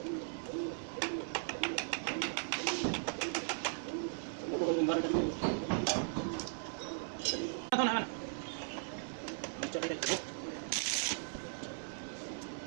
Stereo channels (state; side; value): silent; left; 52 dB below the other